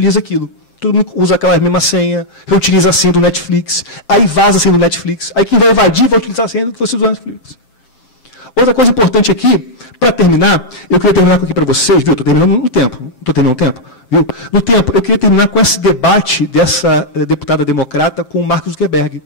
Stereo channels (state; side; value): late; right; 7.7 ms